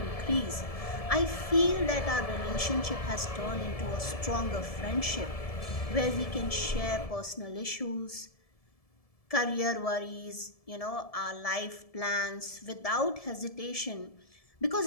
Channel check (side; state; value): right; late; 1.7 ms